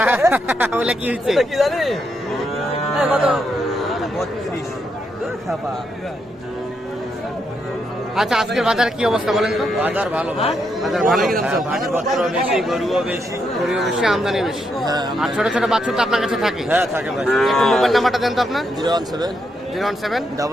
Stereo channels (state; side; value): normal; both; correlation 0.80